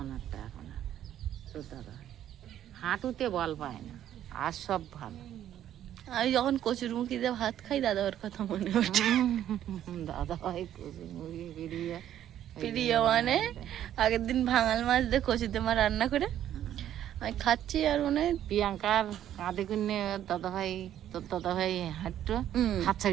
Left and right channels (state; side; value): quieter; left; 11.2 dB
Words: একটা এখন আর। তো দাদা হাঁটুতে বল পায় না, আর সব ভালো। আমি যখন কচুর মুখি দিয়ে ভাত খাই দাদার কথা মনে ওঠে। দাদা ভাই কচুর মুরগি বেরিয়ে প্রিয় মানে আগের দিন ভাঙাল মাছ দিয়ে কচুতে মা রান্না করে আমি খাচ্ছি, আর মনে হয় প্রিয়াঙ্কার কাঁধে কিনে দাদা ভাই, তোর দাদা ভাই হাঁটতো, হুম। হাত